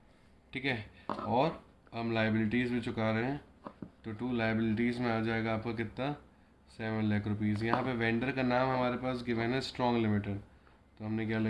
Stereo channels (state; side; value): identical; both; correlation 1.00